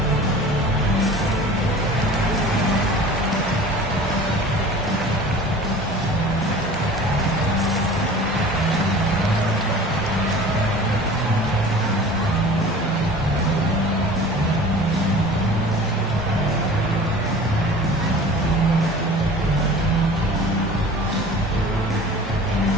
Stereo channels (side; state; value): both; normal; correlation 0.42